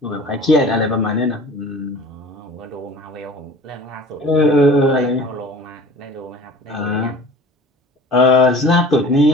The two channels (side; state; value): both; normal; correlation 0.43